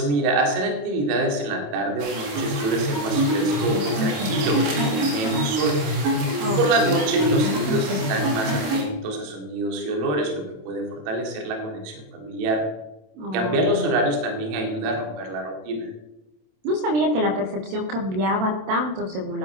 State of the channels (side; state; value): left; late; 27 ms